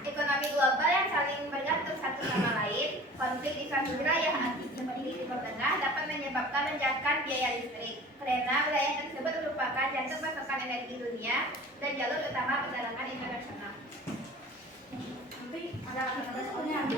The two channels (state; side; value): normal; both; correlation 0.43